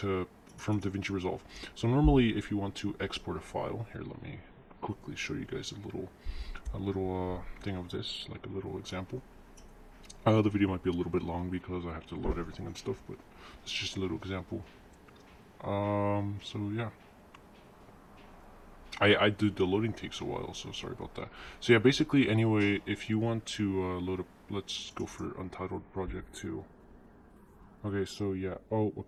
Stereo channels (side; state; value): both; identical; correlation 1.00